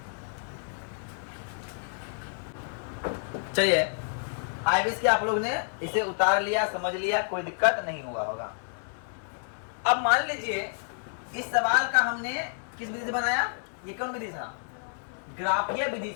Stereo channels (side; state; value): right; silent; digital silence